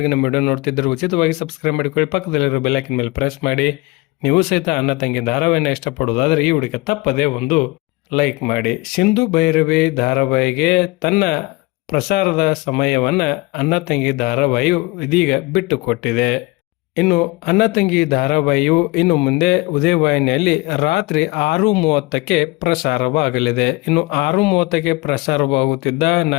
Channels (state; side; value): quieter; right; 23.3 dB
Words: ನಮ್ಮ ವಿಡಿಯೋ ನೋಡ್ತಿದ್ದರೆ ಉಚಿತವಾಗಿ ಸಬ್ಸ್ಕ್ರೈಬ್ ಮಾಡಿಕೊಳ್ಳಿ, ಪಕ್ಕದಲ್ಲಿರೋ ಬೆಲ್ ಐಕಾನ್ ಮೇಲೆ ಪ್ರೆಸ್ ಮಾಡಿ. ನೀವು ಸಹಿತ ಅಣ್ಣ ತಂಗಿ ಧಾರಾವಾಹಿನ ಇಷ್ಟಪಡುವುದಾದರೆ ಈ ವಿಡಿಯೋಕ್ಕೆ ತಪ್ಪದೇ ಒಂದು ಲೈಕ್ ಮಾಡಿ. ಸಿಂಧು ಭೈರವಿ ಧಾರಾವಾಹಿಗೆ ತನ್ನ ಪ್ರಸಾರದ ಸಮಯವನ್ನು ಅಣ್ಣ ತಂಗಿ ಧಾರಾವಾಹಿಯು ಇದೀಗ ಬಿಟ್ಟುಕೊಟ್ಟಿದೆ. ಇನ್ನು ಅಣ್ಣ ತಂಗಿ ಧಾರಾವಾಹಿಯು ಇನ್ನು ಮುಂದೆ ಉದಯ ವಾಹಿನಿಯಲ್ಲಿ ರಾತ್ರಿ 6:30ಕ್ಕೆ ಪ್ರಸಾರವಾಗಲಿದೆ. ಇನ್ನು 6:30ಕ್ಕೆ ಪ್ರಸಾರವಾಗುತ್ತಿದ್ದ